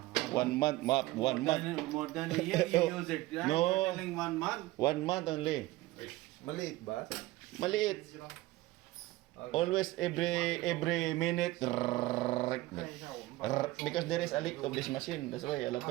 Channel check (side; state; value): left; quieter; 18.2 dB